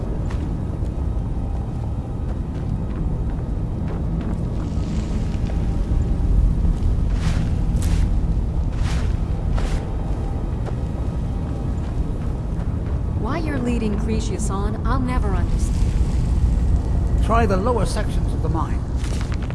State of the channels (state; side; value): identical; both; correlation 1.00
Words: Why you're leading Cretius on, I'll never understand. Try the lower sections of the mine.